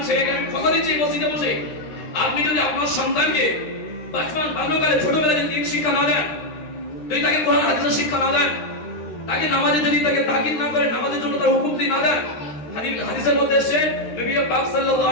ছেলেকে, আমি কথা দিচ্ছি মসজিদে বসে, আপনি যদি আপনার সন্তানকে বাচপান বাল্যকালে ছোটবেলায় যদি দিন শিক্ষা না দেন, যদি তাকে কোরআন হাদিসের শিক্ষা না দেন, তাকে নামাজে যদি তাকে তাকিদ না করেন, নামাজের জন্য তার হুকুম দিয়ে না দেন, হাদিসের মধ্যে এসেছে নবী পাক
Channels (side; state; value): right; late; 13 ms